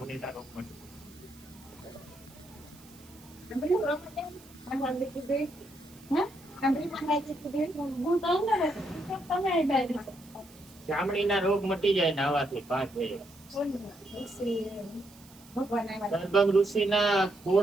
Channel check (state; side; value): noise; right; hiss, 24 dB below the sound